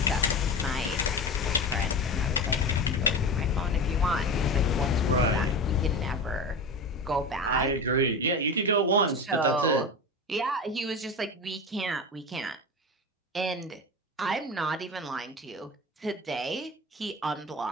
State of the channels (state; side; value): normal; both; correlation 0.26